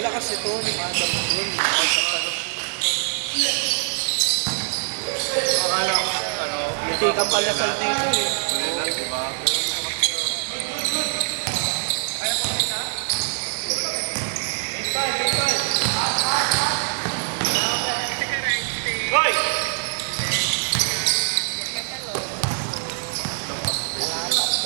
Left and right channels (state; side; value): silent; left; 57 dB below the other